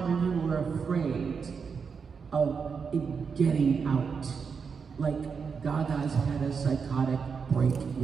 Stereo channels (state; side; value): quieter; left; 5.8 dB